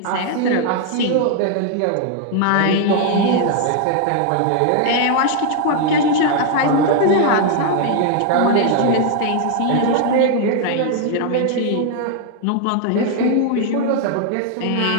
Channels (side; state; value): both; different; correlation 0.00